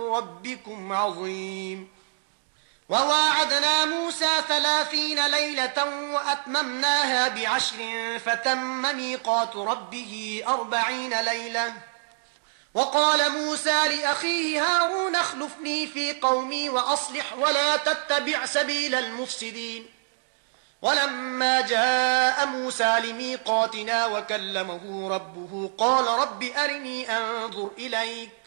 عظيم وواعدنا موسى 30 ليلة وأتممناها ب10 فتم ميقات ربه 40 ليلة وقال موسى لأخيه هارون اخلفني في قومي وأصلح ولا تتبع سبيل المفسدين ولما جاء موسى لميقاتنا وكلمه ربه قال رب أرني أنظر إليك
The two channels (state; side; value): silent; left; digital silence